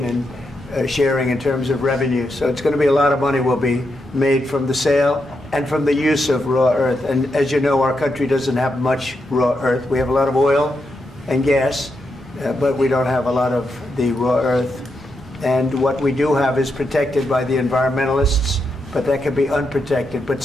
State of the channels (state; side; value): normal; both; correlation 0.83